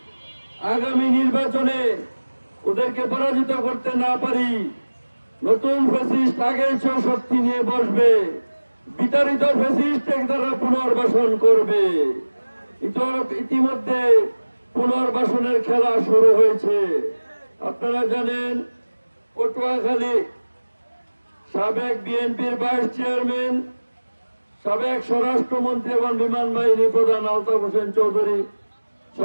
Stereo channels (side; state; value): both; inverted; correlation -1.00